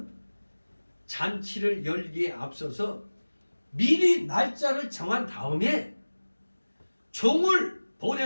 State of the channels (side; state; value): both; inverted; correlation -1.00